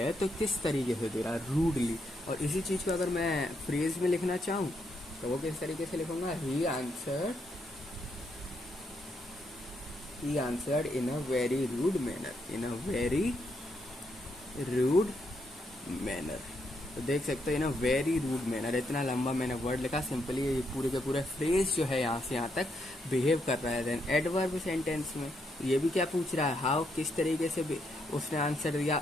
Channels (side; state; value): both; normal; correlation 0.78